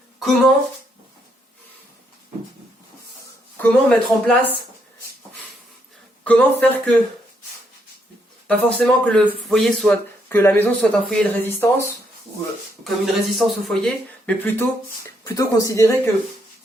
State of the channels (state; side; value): normal; both; correlation 0.75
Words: comment mettre en place, comment faire que, pas forcément que le foyer soit, que la maison soit un foyer de résistance, ou comme une résistance au foyer, mais plutôt considérer que,